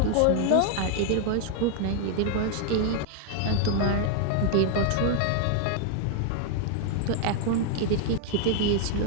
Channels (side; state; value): both; different; correlation 0.00